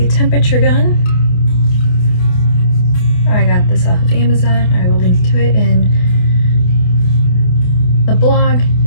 temperature gun. I got this off of Amazon. I will link to it in the blog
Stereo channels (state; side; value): late; right; 28 ms